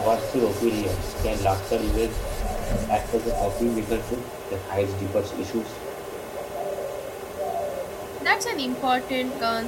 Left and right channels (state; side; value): identical; both; correlation 1.00